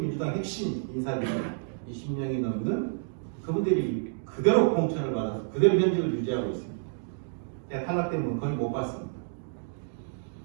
민주당 핵심 인사들이 20명이 넘는 그분들이 그대로 공천을 받아서 그대로 현직을 유지하고 있습니다. 제가 탈락된 분 거의 못 봤습니다.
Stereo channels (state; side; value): silent; left; digital silence